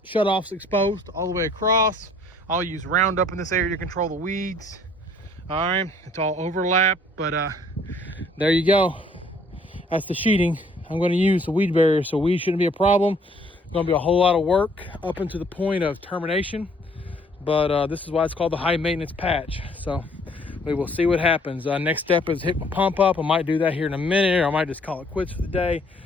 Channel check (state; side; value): normal; both; correlation 0.60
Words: shutoffs exposed all the way across. I'll use Roundup in this area to control the weeds. All right, it's all overlap, but there you go. That's the sheeting. I'm going to use the weed barrier, so weeds shouldn't be a problem. Going to be a whole lot of work up until the point of termination, but this is why it's called the high maintenance patch. So we will see what happens. Next step is hit my pump up. I might do that here in a minute, or I might just call it quits for the day.